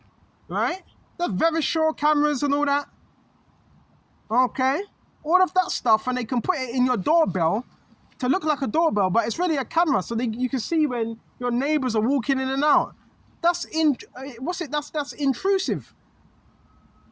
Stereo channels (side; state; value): both; identical; correlation 1.00